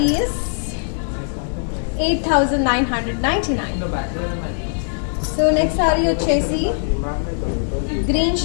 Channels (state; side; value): silent; right; digital silence